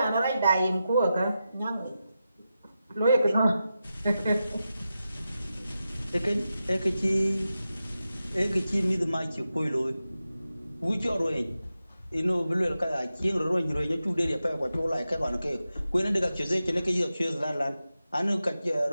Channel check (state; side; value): inverted; both; correlation -0.91